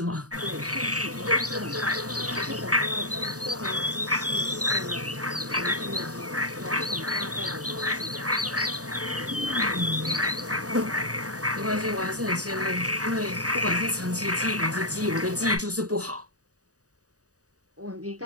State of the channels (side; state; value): left; late; 0.67 ms